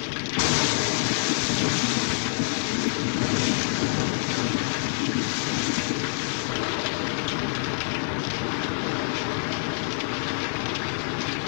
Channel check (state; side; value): silent; right; digital silence